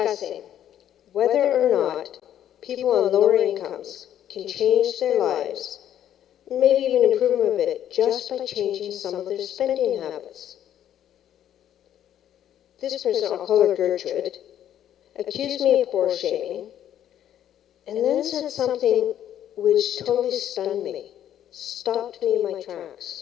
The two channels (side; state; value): right; quieter; 10.8 dB